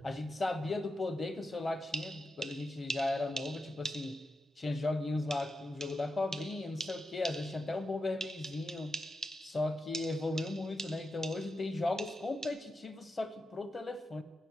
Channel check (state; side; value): normal; both; correlation 0.89